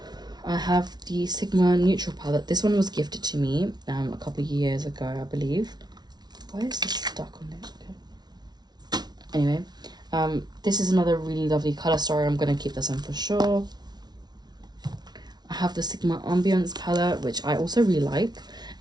I have the Sigma Neutral palette. This one was gifted to me a couple of years ago, I believe. Why is this stuck on it? Okay. Anyway, this is another really lovely colour story. I'm going to keep this one for sure. I have the Sigma Ambience palette, which I also really like.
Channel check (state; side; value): late; left; 0.19 ms